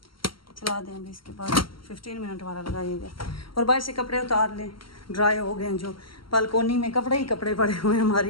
दें अभी। इसके बाद 15 मिनट वाला लगाइएगा। और बाहर से कपड़े उतार लें, ड्राई हो गए हैं। जो बालकोनी में कपड़े ही कपड़े पड़े हुए हैं हमारी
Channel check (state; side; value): late; right; 0.74 ms